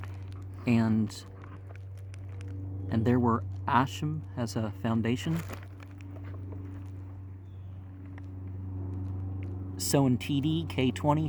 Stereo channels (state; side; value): identical; both; correlation 1.00